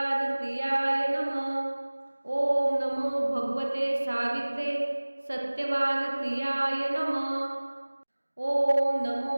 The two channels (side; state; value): both; inverted; correlation -1.00